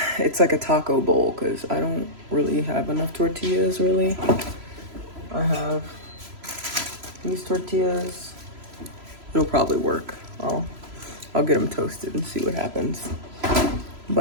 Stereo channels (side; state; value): left; late; 3.0 ms